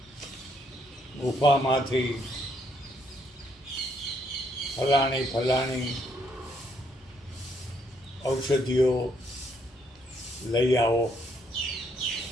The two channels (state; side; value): normal; both; correlation 0.72